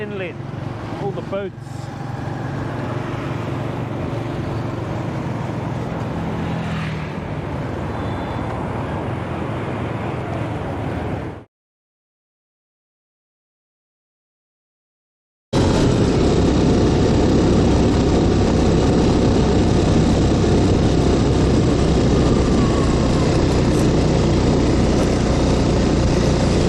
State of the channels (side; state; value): both; identical; correlation 1.00